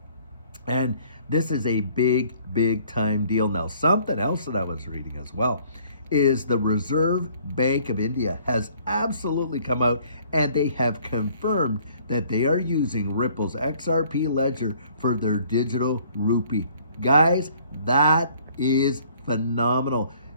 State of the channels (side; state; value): both; inverted; correlation -0.59